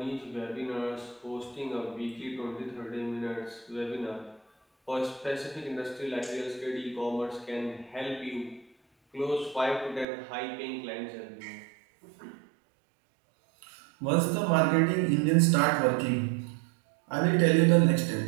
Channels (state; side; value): drops out; left; at 10.1 s